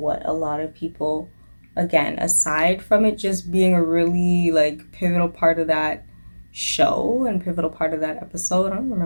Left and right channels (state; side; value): inverted; both; correlation -1.00